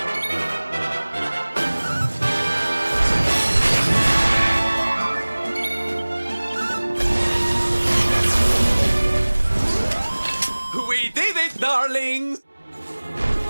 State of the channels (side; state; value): both; inverted; correlation -1.00